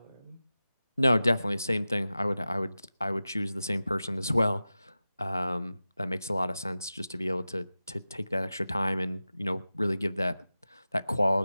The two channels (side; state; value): both; inverted; correlation -0.95